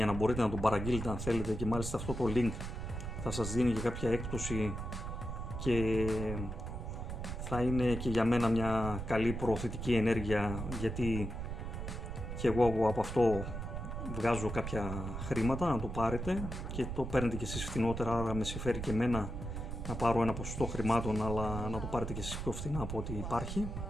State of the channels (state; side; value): noise; right; rumble, 5 dB below the sound